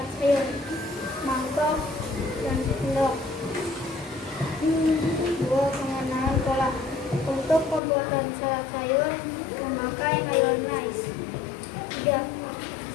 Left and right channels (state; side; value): drops out; right; at 7.8 s